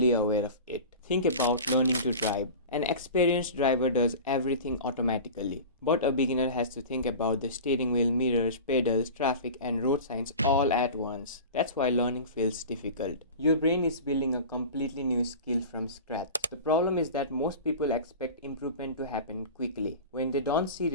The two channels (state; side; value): inverted; both; correlation -0.34